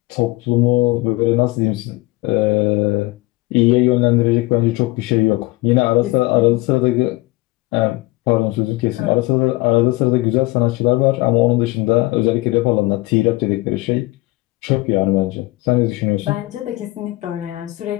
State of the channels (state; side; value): quieter; right; 21.2 dB